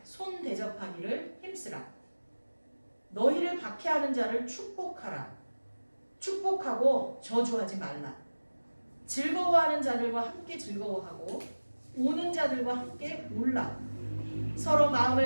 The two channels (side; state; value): both; inverted; correlation -1.00